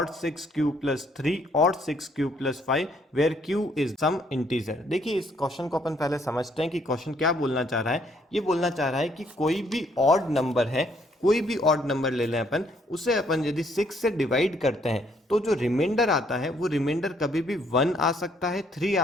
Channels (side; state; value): both; normal; correlation 0.67